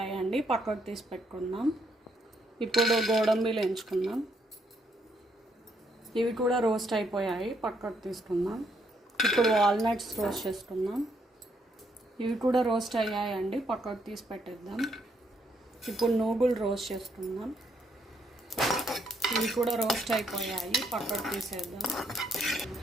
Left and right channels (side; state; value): both; normal; correlation 0.73